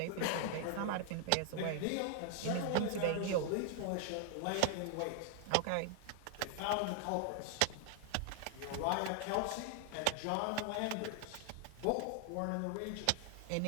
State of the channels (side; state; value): both; different; correlation 0.00